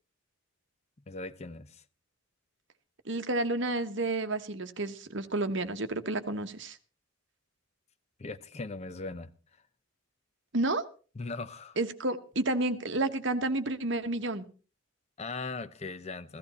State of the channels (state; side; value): normal; both; correlation 0.10